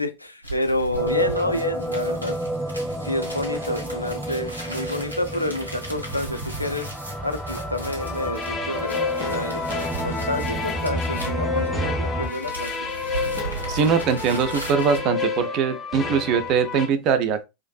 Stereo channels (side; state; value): both; normal; correlation 0.03